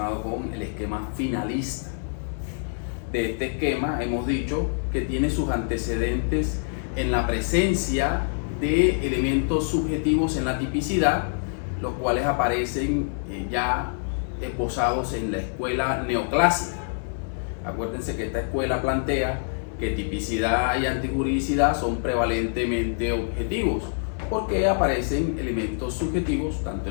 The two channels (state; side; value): silent; right; 57 dB below the other